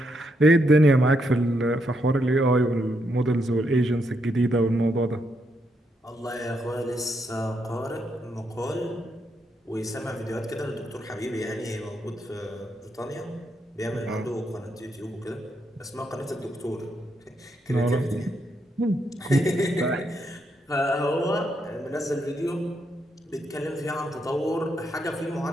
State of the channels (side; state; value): both; normal; correlation 0.79